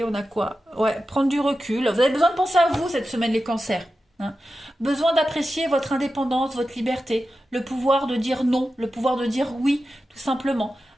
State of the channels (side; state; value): both; normal; correlation 0.92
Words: On a quoi? Ouais. Prendre du recul. Vous avez besoin de penser à vous cette semaine, les cancers. Hein. Besoin d'apprécier votre indépendance, votre liberté, le pouvoir de dire non, le pouvoir de dire oui, tout simplement.